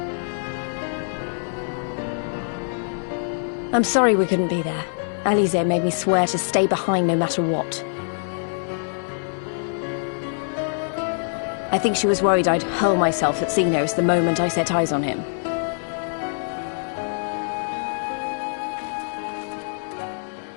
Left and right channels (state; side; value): silent; right; digital silence